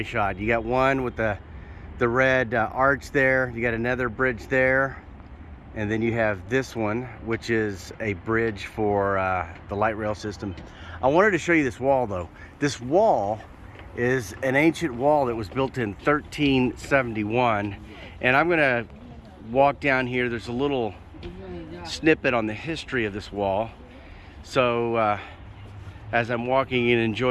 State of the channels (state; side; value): identical; both; correlation 1.00